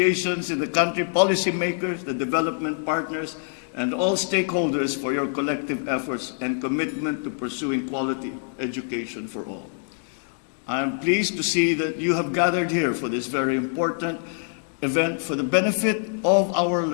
in the country, policymakers, the development partners, and all stakeholders for your collective efforts and commitment to pursuing quality education for all. I am pleased to see that you have gathered here for this very important event for the benefit of our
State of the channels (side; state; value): right; silent; 62 dB below the other